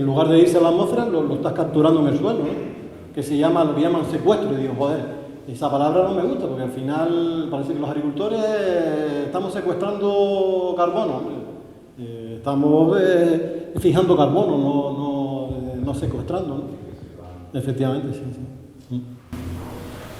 lugar de irse a la atmósfera, lo estás capturando en el suelo, ¿no? Lo que llaman secuestro. Y digo, joder, esa palabra no me gusta, porque al final parece que los agricultores estamos secuestrando carbono, estamos fijando carbono, no secuestrando, ¿no? Efectivamente, sí.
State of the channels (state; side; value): identical; both; correlation 1.00